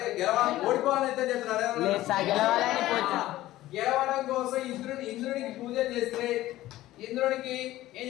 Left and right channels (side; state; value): right; quieter; 15.6 dB